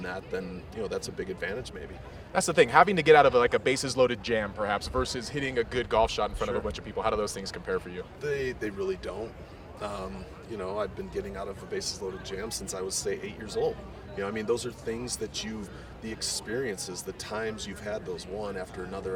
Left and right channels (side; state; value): both; identical; correlation 1.00